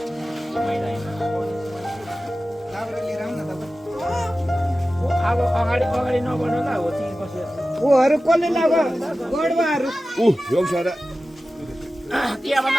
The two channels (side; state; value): both; normal; correlation 0.95